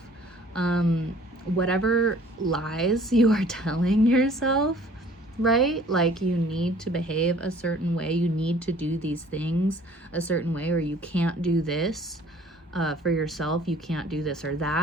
Whatever lies you are telling yourself, right? Like, you need to behave a certain way, you need to do these things a certain way, or you can't do this for yourself, you can't do this or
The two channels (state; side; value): normal; both; correlation 0.53